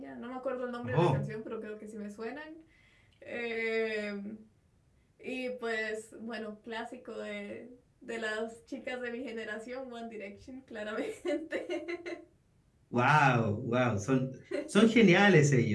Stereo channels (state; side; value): identical; both; correlation 1.00